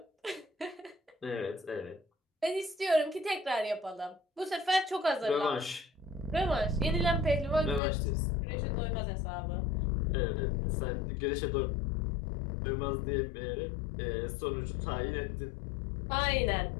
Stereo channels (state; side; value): drops out; right; at 7.8 s